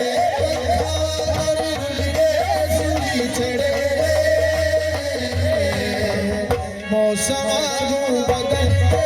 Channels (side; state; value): both; identical; correlation 1.00